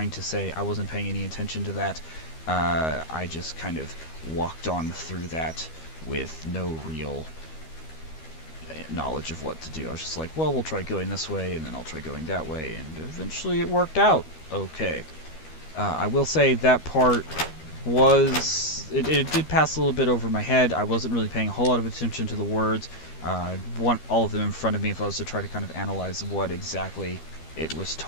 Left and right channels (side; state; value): right; late; 13 ms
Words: to say. I wasn't paying any attention to that. I just kind of walked on through that with no real knowledge of what to do. I was just like, well, we'll try going this way, and then I'll try going that way, and eventually it worked out okay. I will say that part was... It did pass a little bit over my head. I wasn't really paying a whole lot of attention to the words. I want all of them in front of me if I was to try to kind of analyze what exactly it was